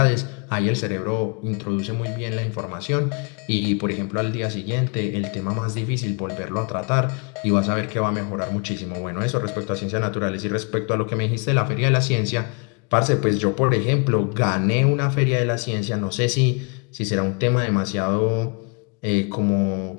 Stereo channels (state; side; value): quieter; right; 36.4 dB